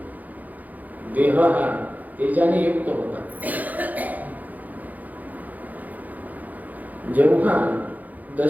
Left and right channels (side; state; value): left; late; 0.080 ms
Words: देह हा तेजाने युक्त होता. जेव्हा